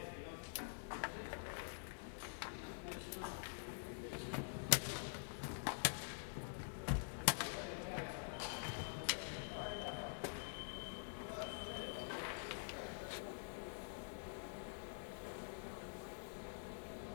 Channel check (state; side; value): silent; right; digital silence